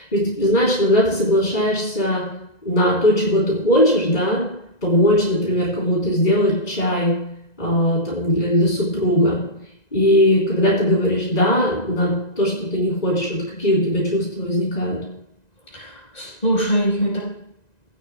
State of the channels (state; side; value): late; right; 1.9 ms